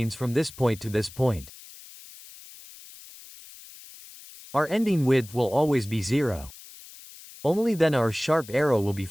from this point to this point. Our ending width will always be 0. Only then our sharp arrow will be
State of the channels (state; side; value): noise; left; hiss, 19 dB below the sound